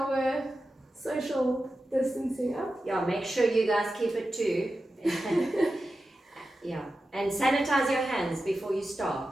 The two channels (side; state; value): both; normal; correlation 0.92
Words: social distancing up. Yeah, make sure you guys keep it too. Yeah, and sanitize your hands before you